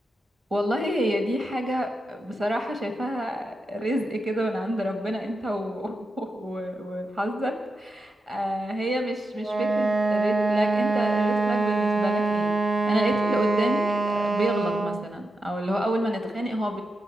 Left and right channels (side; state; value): both; normal; correlation 0.88